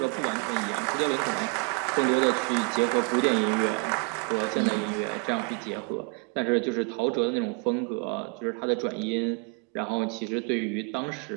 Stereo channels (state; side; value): quieter; left; 34.8 dB